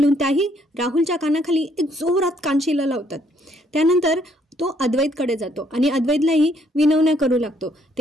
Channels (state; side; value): normal; both; correlation 0.67